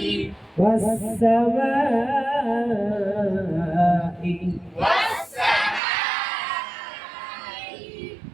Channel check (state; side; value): drops out; left; at 5.8 s